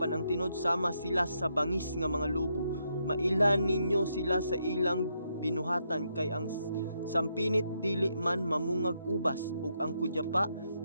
ang tinod sama sila sa bangis nga mga lobo. Mailan ninyo sila sa ilang binuhatan, kay ang sampinit dili man mamungag ubas, ug ang kudyapa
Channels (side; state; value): both; inverted; correlation -0.78